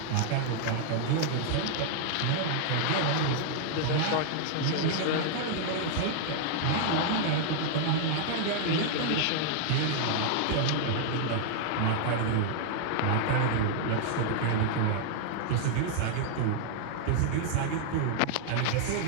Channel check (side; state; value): both; different; correlation -0.01